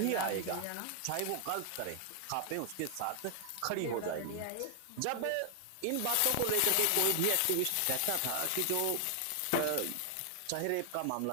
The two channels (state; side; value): different; both; correlation 0.00